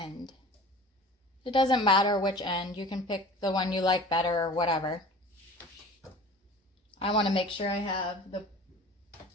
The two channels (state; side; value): normal; both; correlation 0.41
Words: It doesn't matter which end. You can pick the one you like better or whatever. I want to make sure I have the